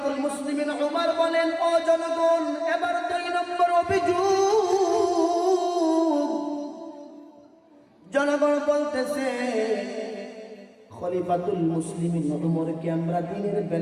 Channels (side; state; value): both; identical; correlation 1.00